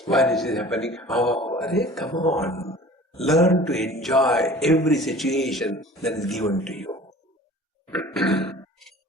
why this is happening? Oh, come on. Learn to enjoy every situation that is given to you.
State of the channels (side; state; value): both; normal; correlation 0.45